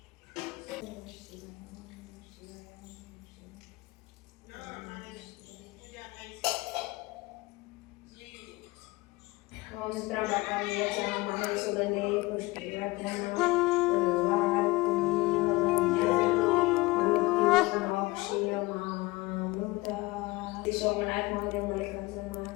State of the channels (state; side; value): quieter; right; 22.1 dB